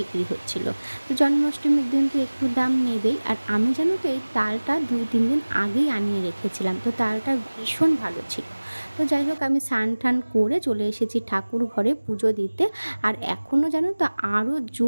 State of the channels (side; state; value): both; inverted; correlation -1.00